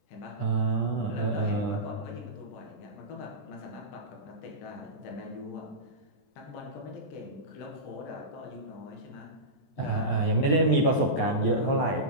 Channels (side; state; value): right; late; 14 ms